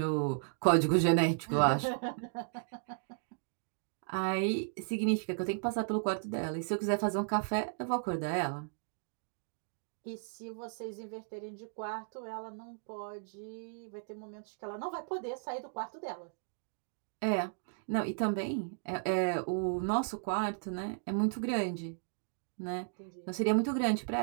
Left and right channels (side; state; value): left; silent; digital silence